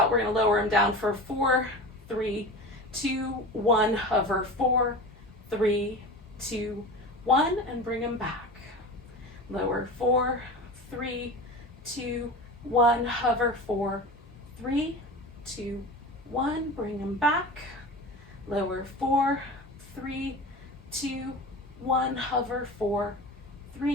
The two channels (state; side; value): normal; both; correlation 0.32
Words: We're going to lower them down for 4, 3, 2, 1. Hover 4, 3, 2, 1, and bring them back. Lower 4, 3, 2, 1. Hover 4, 3, 2, 1. Bring them back. Lower 4, 3, 2, 1. Hover 4,